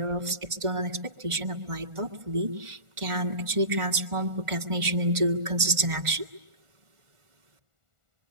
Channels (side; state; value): left; late; 1.4 ms